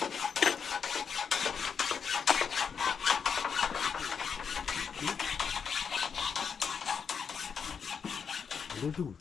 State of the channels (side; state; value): right; quieter; 6.5 dB